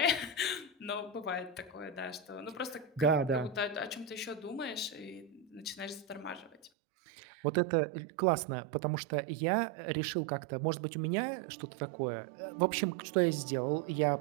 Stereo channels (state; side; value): drops out; left; at 6.7 s